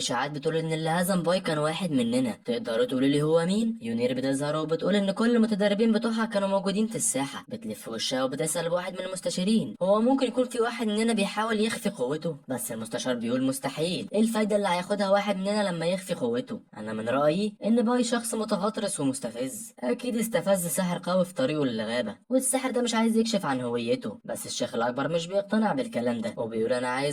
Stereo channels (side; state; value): both; identical; correlation 1.00